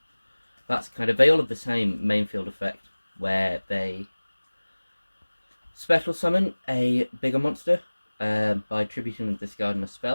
That's kind of, they all have the same main field effect, where they special summon a bigger monster by tributing and discarding a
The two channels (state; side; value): inverted; both; correlation -1.00